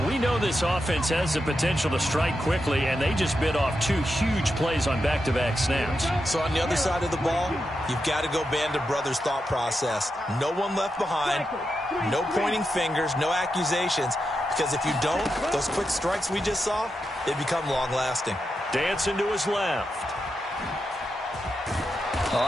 We know this offense has the potential to strike quickly, and they just bit off 2 huge plays on back-to-back snaps. So on the other side of the ball, you've got to go band of brothers thought process. No one left behind, no pointing fingers, no accusations, because if you don't, those quick strikes we just saw, they become long-lasting. Dancing to his left.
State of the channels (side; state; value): both; normal; correlation 0.87